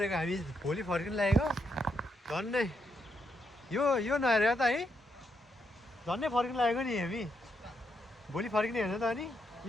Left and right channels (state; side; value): normal; both; correlation 0.80